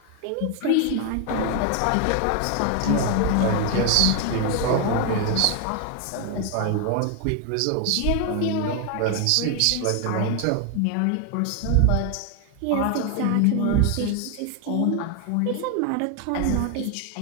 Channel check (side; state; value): both; different; correlation 0.01